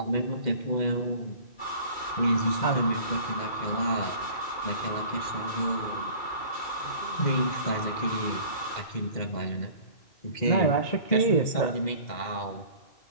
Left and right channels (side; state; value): right; late; 2.1 ms